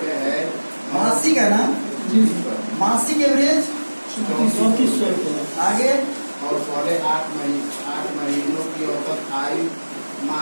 है। मासिक है ना, मासिक एवरेज 3400 आगे। और पहले 8 महीनों की औसत आयु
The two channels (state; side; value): inverted; both; correlation -1.00